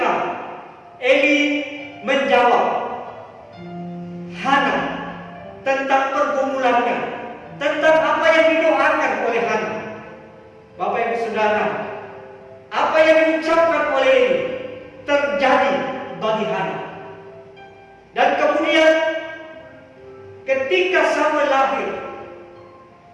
Eli menjawab Hana tentang pergumulannya, tentang apa yang didoakan oleh Hana. Bapak Ibu Saudara, apa yang diucapkan oleh Eli terjadi bagi Hana. Dan kemudian ketika Samuel lahir,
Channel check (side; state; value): both; identical; correlation 1.00